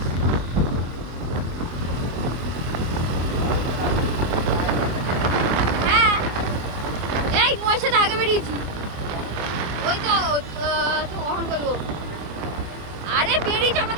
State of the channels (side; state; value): left; late; 24 ms